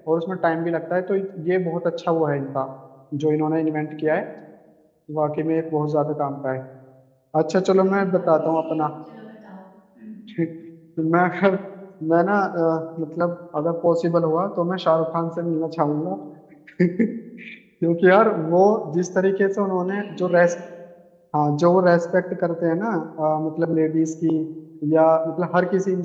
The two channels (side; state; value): both; identical; correlation 1.00